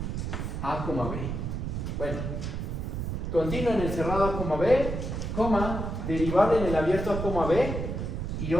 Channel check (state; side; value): noise; right; rumble, 3 dB below the sound